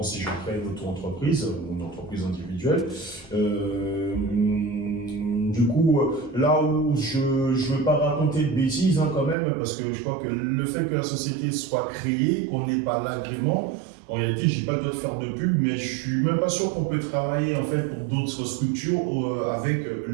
si je crée une auto-entreprise ou une entreprise individuelle. Du coup, là où je veux pas raconter de bêtises quand même, parce que je crois que le fait que la société soit créée, qu'on n'ait pas l'agrément, en réalité, j'ai pas le droit de faire de pub, mais je suis même pas sûr qu'on peut travailler en fait pour d'autres structures avec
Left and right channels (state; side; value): drops out; left; at 9.3 s